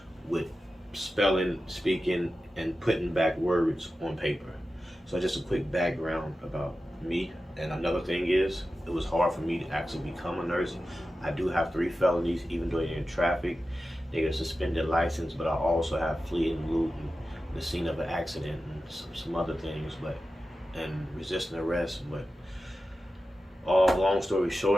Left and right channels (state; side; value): normal; both; correlation 0.93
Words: with spelling, speaking, and putting back words on paper. So just a quick background about me. And another thing is, it was hard for me to actually become a nurse. I do have 3 felonies, even though they're in traffic. They get a suspended license, but I also have fleeing loot and the scene of an accident and some other things, but and resisting arrest. But all long story